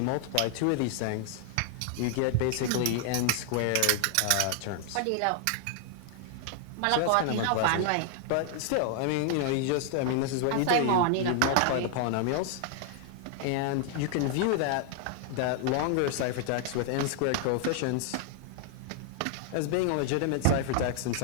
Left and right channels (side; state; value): both; different; correlation 0.00